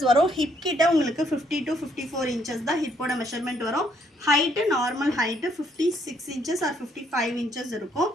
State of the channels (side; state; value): both; normal; correlation 0.69